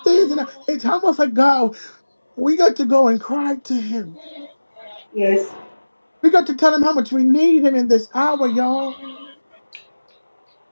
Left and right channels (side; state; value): both; inverted; correlation -1.00